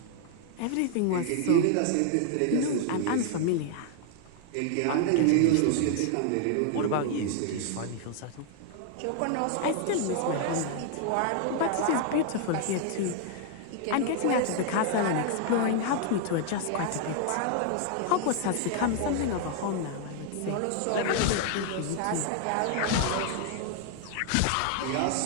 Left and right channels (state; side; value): different; both; correlation 0.00